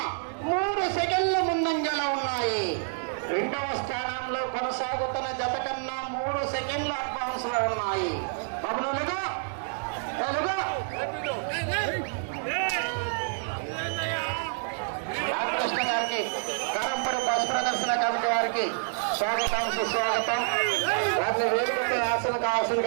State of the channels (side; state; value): left; silent; digital silence